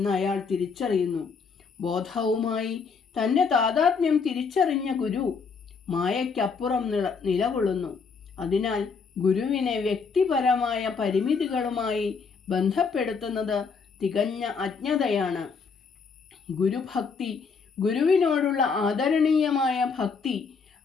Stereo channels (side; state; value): right; quieter; 5.3 dB